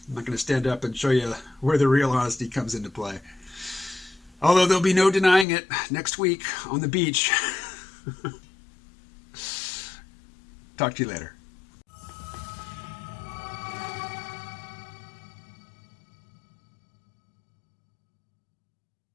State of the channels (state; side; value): drops out; right; at 5.5 s